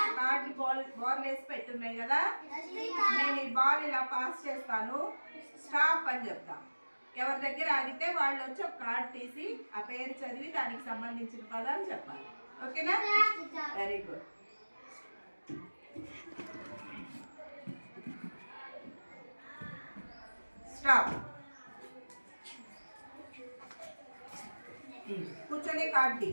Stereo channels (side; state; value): both; inverted; correlation -1.00